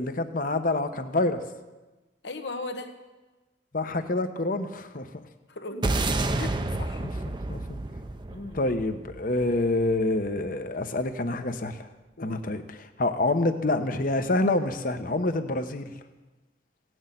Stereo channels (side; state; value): both; normal; correlation 0.28